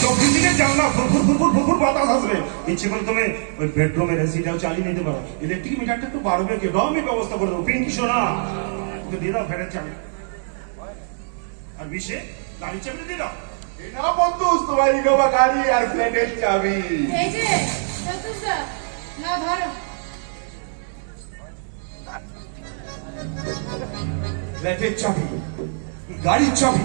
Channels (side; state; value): left; silent; digital silence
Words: চব্বিশ দিনের জানলা ফুরফুর বাতাস আসবে। ইচ্ছে করে তুমি ওই বেডরুমের এসিটাও চালিয়ে নিতে পারো। ইলেকট্রিক মিটারটা একটু বাড়বে, কি আমি ব্যবস্থা করে দেবো। পিঙ্কি সোনা, ওকে দিয়ে দাও ফ্ল্যাটের চাবি, আর বিশে গাড়ির চাবিটা দিয়ে দাও। এটা বন্ধু, তোমার ইনোভা গাড়ি আর ফ্ল্যাটের চাবি। এই যে চতুর্দা, না ধরো। ফ্ল্যাটের চাবি, গাড়ির চাবি।